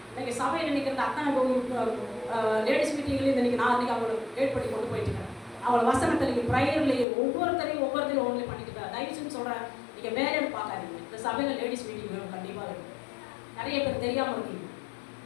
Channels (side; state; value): right; drops out; at 7.1 s